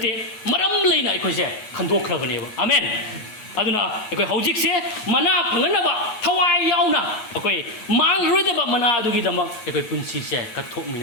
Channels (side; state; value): right; late; 9.4 ms